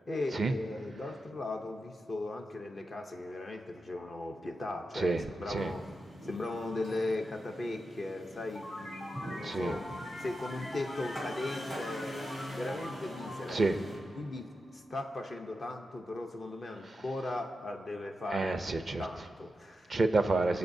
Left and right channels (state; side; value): normal; both; correlation 0.89